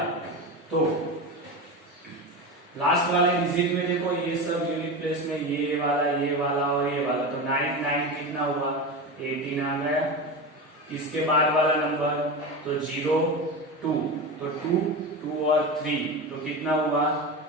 तो लास्ट वाले डिजिट में देखो ये सब यूनिट प्लेस में ये वाला और ये वाला, तो 9 9 कितना हुआ 18 आ गया। इसके बाद वाला नंबर तो 0 2 तो 2 2 और 3 तो कितना हुआ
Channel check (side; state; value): both; normal; correlation 0.23